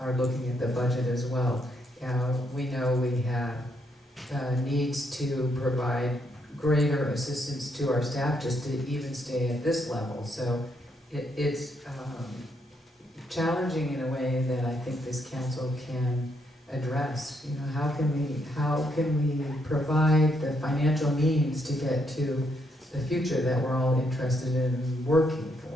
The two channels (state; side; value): normal; both; correlation 0.76